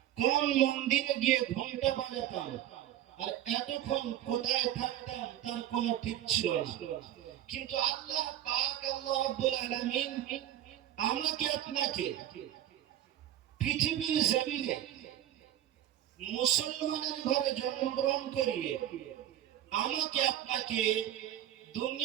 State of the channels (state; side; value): quieter; left; 12.3 dB